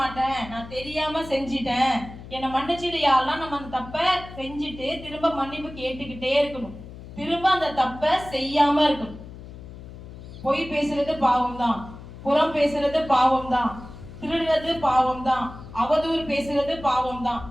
நான் தெரியாம செஞ்சிட்டேன், என்னை மன்னிச்சிடு யாரெல்லாம். நம்ம அந்த தப்பை செஞ்சுட்டு திரும்ப மன்னிப்பு கேட்டுக்கிட்டே இருக்கணும். திரும்ப அந்த தப்பை செய்யாம இருக்கணும். பொய் பேசுறது பாவம் தான், புறம் பேசுறது பாவம் தான், திருடுறது பாவம் தான், அவதூறு பேசுறது பாவம் தான்.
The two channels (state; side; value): noise; left; hum, 15 dB below the sound